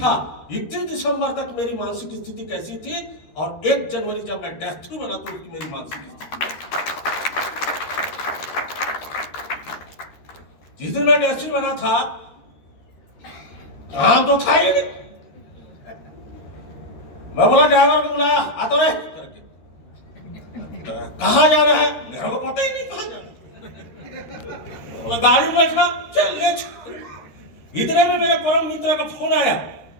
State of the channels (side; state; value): right; late; 13 ms